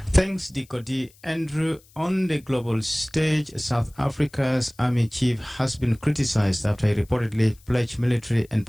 Thanks, Diko D. Andrew. On the global stage, South Africa's army chief has been criticized after he reportedly pledged military and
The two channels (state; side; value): noise; left; hiss, 28 dB below the sound